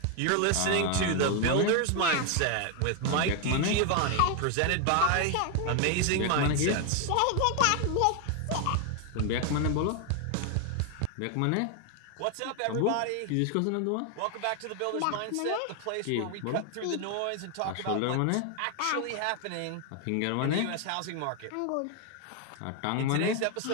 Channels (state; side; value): different; both; correlation 0.01